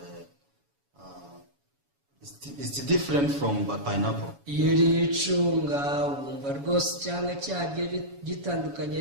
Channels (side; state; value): left; late; 7.1 ms